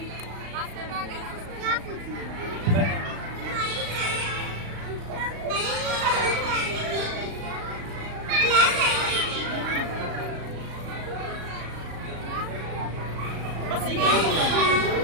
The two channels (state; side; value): late; left; 36 ms